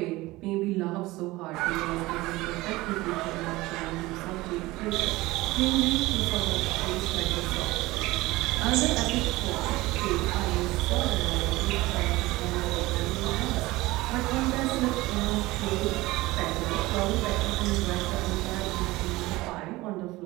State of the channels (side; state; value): left; quieter; 19.7 dB